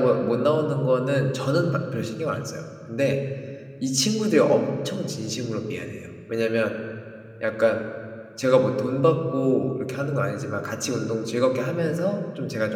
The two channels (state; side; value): identical; both; correlation 1.00